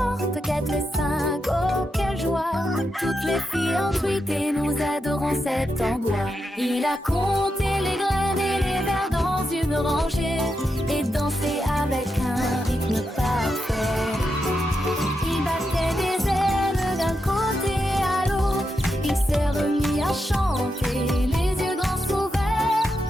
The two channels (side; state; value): both; normal; correlation 0.86